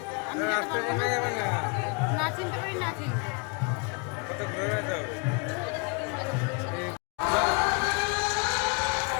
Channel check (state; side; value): quieter; right; 32.6 dB